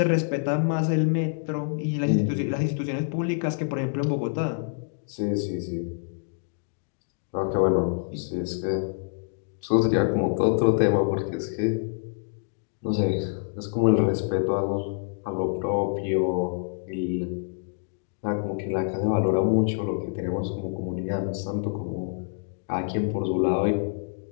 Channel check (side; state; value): right; silent; digital silence